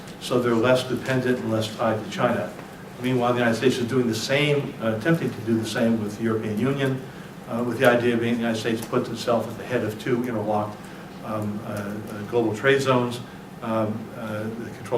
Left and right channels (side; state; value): both; identical; correlation 1.00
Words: so they're less dependent and less tied to China. Meanwhile, the United States is doing the same, attempting to do the same with the European Union, with the idea being the United States puts itself at the head of two interlocked global trade zones that